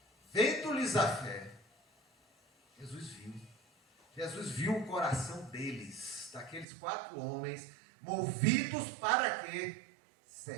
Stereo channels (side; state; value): left; drops out; at 6.7 s